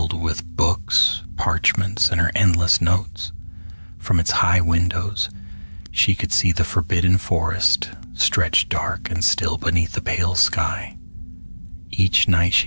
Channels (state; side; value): inverted; both; correlation -1.00